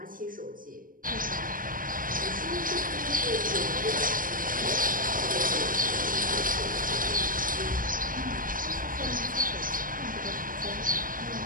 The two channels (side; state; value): left; late; 0.40 ms